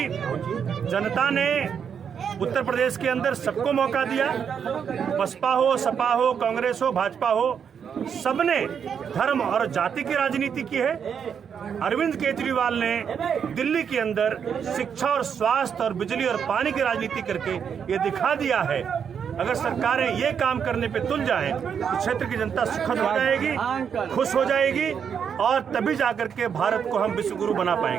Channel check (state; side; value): quieter; left; 7.4 dB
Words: जनता ने उत्तर प्रदेश के अंदर सबको मौका दिया, बसपा हो, सपा हो, कांग्रेस हो, भाजपा हो, सबने धर्म और जाति की राजनीति की है। अरविंद केजरीवाल ने दिल्ली के अंदर शिक्षा और स्वास्थ्य और बिजली और पानी की राजनीति करके ये दिखा दिया है। अगर सरकारें ये काम करने पे तुल जाएं तो क्षेत्र की जनता सुखद हो जाएगी, खुश हो जाएगी, और तभी जाकर के भारत को हम विश्व गुरु बना